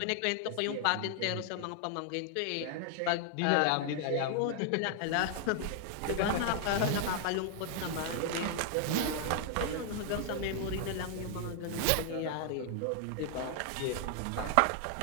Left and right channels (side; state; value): both; different; correlation 0.00